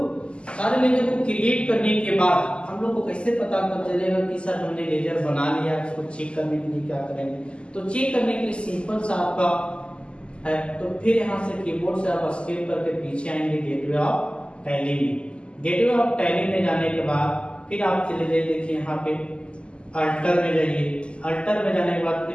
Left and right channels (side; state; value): right; late; 0.052 ms